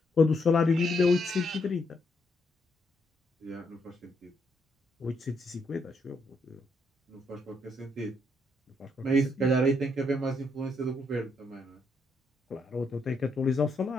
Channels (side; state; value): both; normal; correlation 0.75